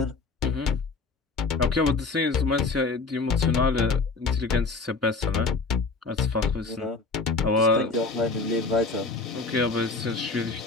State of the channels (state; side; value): quieter; right; 4.0 dB